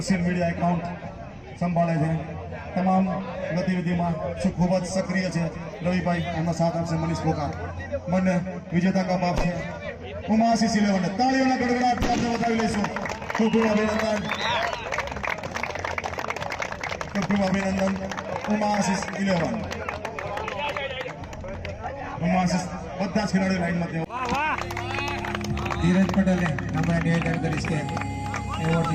મીડિયા એકાઉન્ટ સંભાળે છે, તમામ ગતિવિધિમાં ખૂબ જ સક્રિય છે. રવિભાઈ એમનો સાથ આપશે. મનીષ પોકા બંને વિજેતા કપ આપશે. ઉમાશીષ 11 તાળીઓના ગડગડાટ આપણે વધાવી લઈશું. ખૂબ ખૂબ અભિનંદન, ખૂબ ખૂબ અભિનંદન. ઉમાશીષ 11 ઉમાશીષ બધા જ ખેલાડીઓ લાઈનમાં તેઓ ધીરજ પટેલને આપણે નિવેદન કરીશ કે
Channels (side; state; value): both; identical; correlation 1.00